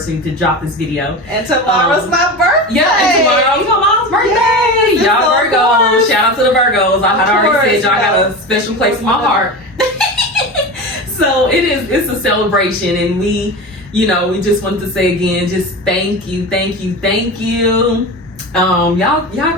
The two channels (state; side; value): normal; both; correlation 0.27